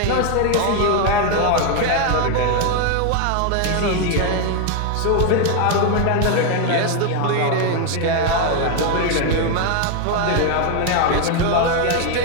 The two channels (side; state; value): both; different; correlation 0.01